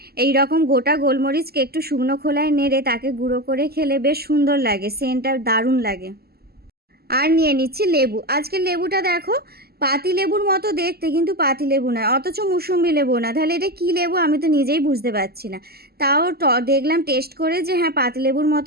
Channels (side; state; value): left; late; 0.46 ms